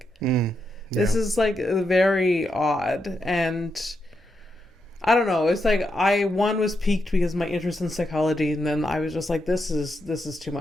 this is like very odd. And I don't know, it's like I was piqued because of my interest in psychology, and then I was just like, this is too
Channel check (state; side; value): normal; both; correlation 0.83